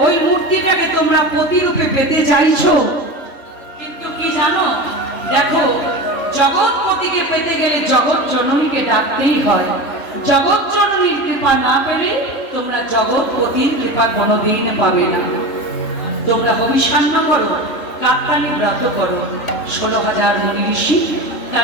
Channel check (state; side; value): late; right; 3.4 ms